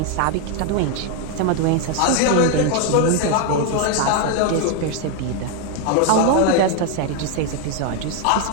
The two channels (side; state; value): both; different; correlation 0.01